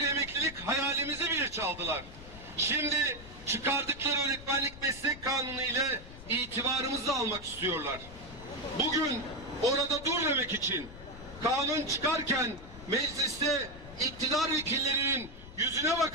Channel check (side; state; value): left; noise; rumble, 16 dB below the sound